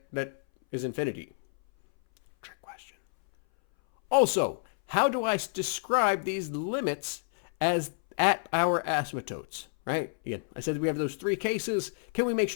that is infinity? Trick question. Also, how do I describe these limits as at our asymptotes? Right? Again, I said that we have those three cases. Can we make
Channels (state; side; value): silent; right; 58 dB below the other